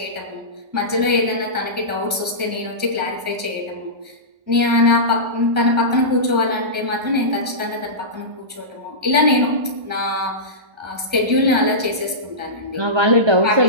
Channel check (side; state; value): left; late; 1.3 ms